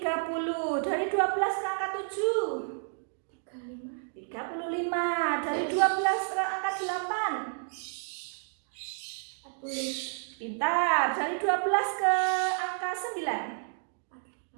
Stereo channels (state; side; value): silent; left; digital silence